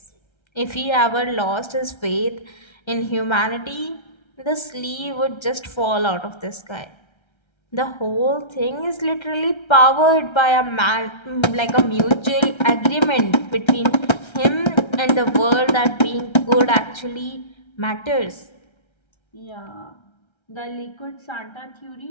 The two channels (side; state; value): right; late; 1.3 ms